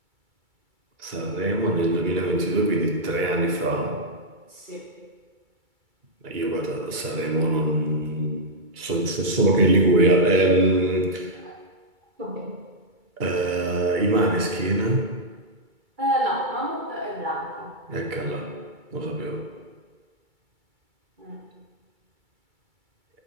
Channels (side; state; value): left; late; 2.3 ms